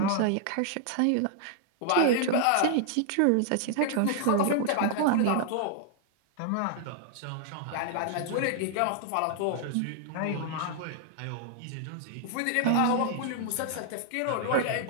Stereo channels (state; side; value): different; both; correlation -0.01